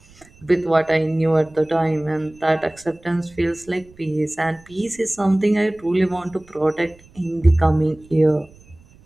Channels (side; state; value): right; noise; rumble, 27 dB below the sound